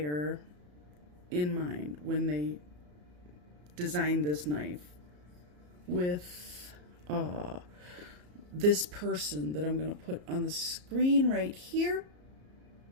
in mind when they designed this knife with this person that I'm going to put on the screen right here.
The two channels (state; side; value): late; left; 34 ms